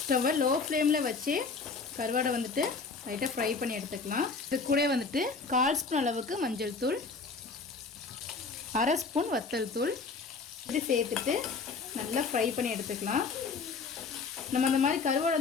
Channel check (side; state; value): right; quieter; 4.6 dB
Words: ஸ்டவ்வை லோ ஃப்ளேமில் வச்சு கருவாடை வந்துட்டு லைட்டாக ஃப்ரை பண்ணி எடுத்துக்கலாம். இது கூட வந்துட்டு 1/4 ஸ்பூன் அளவுக்கு மஞ்சள் தூள், 1/2 ஸ்பூன் வத்தல் தூள் இது சேர்த்துட்டு நல்லா ஃப்ரை பண்ணி எடுத்துக்கலாம். நம்ம அந்த மாதிரி கருவாடு